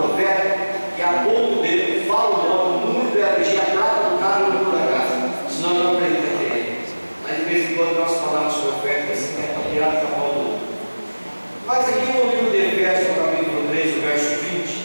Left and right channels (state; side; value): inverted; both; correlation -1.00